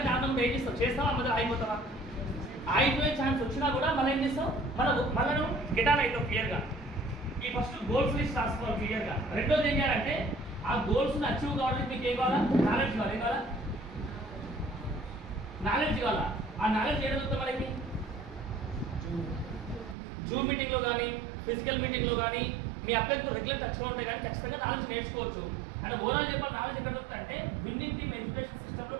ఏం చేస్తావు? చేస్తావా? మధ్యలో ఆగిపోతావా? ఆగిపోయే ఛాన్స్ వచ్చినా కూడా మళ్ళీ ఏం చేస్తావు? మళ్ళీ నువ్వు గెటాన్ అవుతావు క్లియర్గా. ఈ ఫస్ట్ గోల్స్ లిస్ట్ రాసుకోవాలి క్లియర్గా. రెండోది ఏం చేయాలంటే ఆ గోల్స్ని అచీవ్ కావాలంటే మీకు ఏం కావాలా? నాలెడ్జ్ కావాలి. ఏం కావాలా? నాలెడ్జ్ కావాలా? ఆ నాలెడ్జ్ ఏం చదువుతాం మనకి? జూమ్ మీటింగ్లో కానీ, ఫిజికల్ మీటింగ్లో కానీ మీ అభ్యర్థులు రెగ్యులర్ టచ్లో ఉంటే కానీ ఖచ్చితంగా నాలెడ్జ్ నేర్చుకోవచ్చు. అంటే ఓవరాల్ చెప్పాలి, నాలెడ్జ్ ఎక్కడ దొరుకుతుంది అంటే విన్నింగ్ టీమ్ ఎడ్యుకేషన్ సిస్టంలో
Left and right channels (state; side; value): drops out; left; at 20.0 s